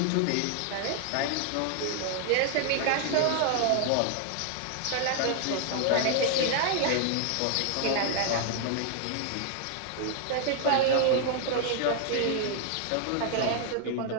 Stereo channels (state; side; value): different; both; correlation 0.00